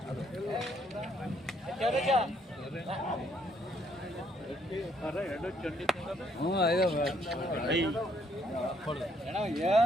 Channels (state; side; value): normal; both; correlation 0.69